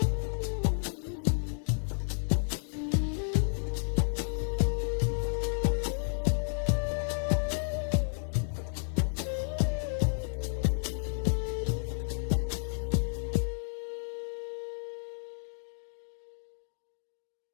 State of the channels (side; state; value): right; silent; digital silence